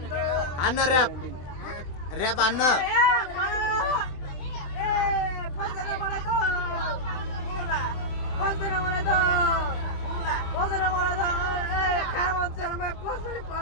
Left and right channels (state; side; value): late; right; 23 ms